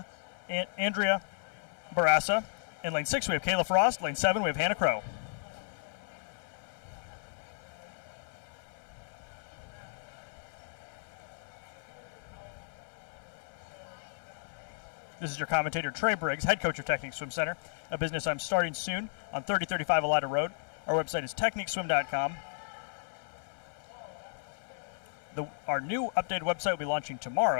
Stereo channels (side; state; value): right; silent; 55 dB below the other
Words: Andrea Barassa. In lane 6, we have Kayla Frost. Lane 7, we have Hannah Crow. This is your commentator, Trey Briggs, head coach of Technique Swim Center, a business I'm starting soon on 3035 Elida Road. Our website is techniqueswim.com. Our new updated website will be launching